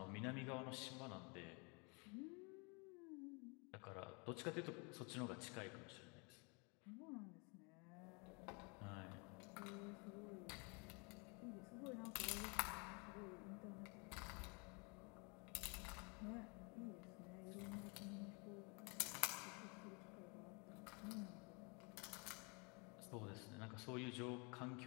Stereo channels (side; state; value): right; quieter; 32.3 dB